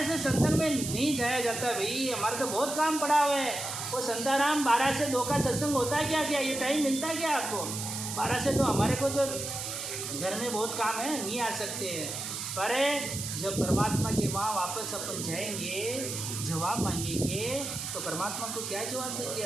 से सत्संग में नहीं जाया जाता, भाई हमारा तो बहुत काम पड़ा हुआ है। वो संताराम 12 से 2 का सत्संग होता है क्या, ये टाइम मिलता है क्या आपको? 12 से 2 हमारे को तो घर में बहुत काम है, नहीं आ सकते हैं। पर जब परमात्मा के वहाँ वापस अपन जाएंगे, जवाब मांगेंगे, तो परमात्मा को क्या जवाब देंगे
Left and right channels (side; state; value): right; noise; hiss, 5 dB below the sound